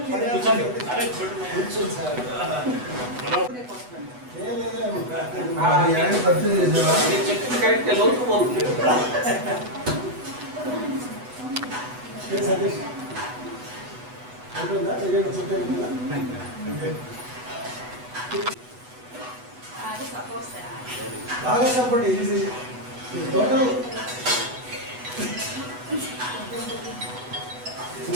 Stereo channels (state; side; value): late; left; 8.1 ms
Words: there? కూర్చోండి. అరే చూడు. మీరు చెప్పిన కరెక్ట్ లోతు పోతుంది. అది సపోర్ట్ సార్. బాగా సపోర్ట్ ఈజీ టోటల్